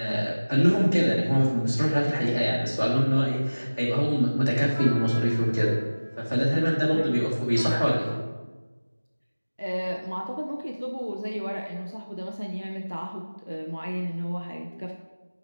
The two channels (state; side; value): inverted; both; correlation -1.00